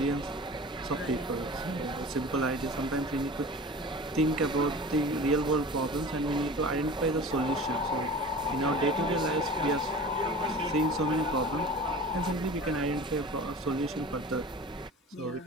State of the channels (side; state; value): both; normal; correlation 0.38